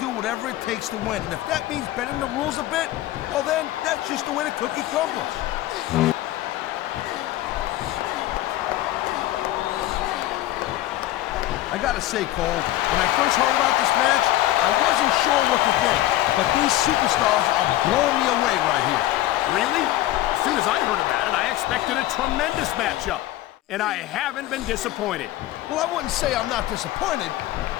whatever it takes to win. And if that means bending the rules a bit, well then, that's just the way the cookie crumbles. I gotta say, Cole, when I first heard about this match, I wasn't sure what to think. But these superstars are blowing me away right here. Really? As soon as I heard about it, I expected a tremendous matchup. And I haven't been disappointed. Well, I wouldn't say I'm not disappointed,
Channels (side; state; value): right; quieter; 15.2 dB